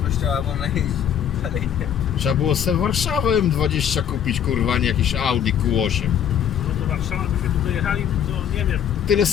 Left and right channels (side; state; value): right; quieter; 9.1 dB